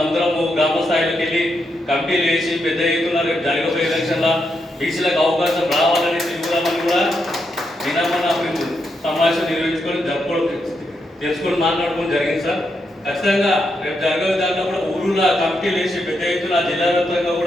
అందరము గ్రామ స్థాయిలోకి వెళ్ళి కమిటీలు వేసి పెద్ద ఎత్తున రేపు జరగబోయే ఎలక్షన్లో బీసీలకు అవకాశం రావాలని తిరుగుదామని కూడా నిన్న మేము సమావేశం నిర్వహించుకొని తెలుసుకొని మాట్లాడుకోవడం జరిగింది సార్. ఖచ్చితంగా రేపు జరగబోయే దాంట్లో కూడా ఊరులో కమిటీలు వేసి పెద్ద ఎత్తున జిల్లా వ్యాప్తంగా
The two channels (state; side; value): normal; both; correlation 0.82